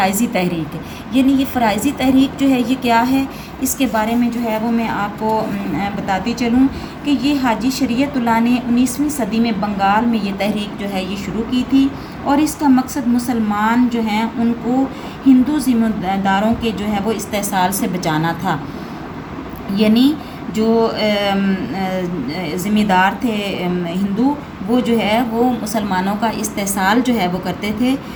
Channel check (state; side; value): identical; both; correlation 1.00